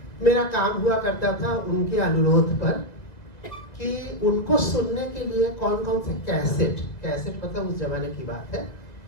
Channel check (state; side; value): late; right; 2.0 ms